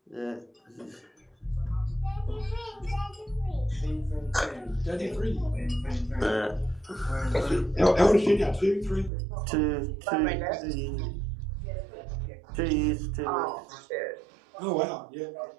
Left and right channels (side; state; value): left; drops out; at 9.1 s